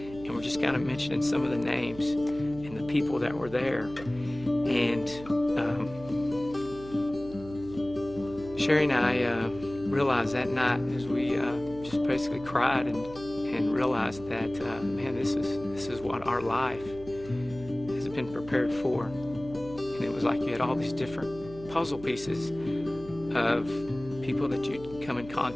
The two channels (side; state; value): right; noise; hum, 16 dB below the sound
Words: and we're just kind of mentioning some of the names and the people that were there. And Sherry and I realized that night, as we just basically cried and realized that, this is what our life has been prepared for. And it was like you had all these different puzzle pieces of people that you'd come in